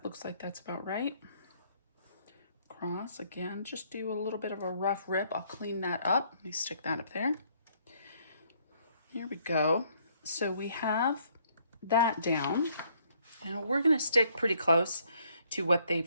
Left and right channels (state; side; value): inverted; both; correlation -0.67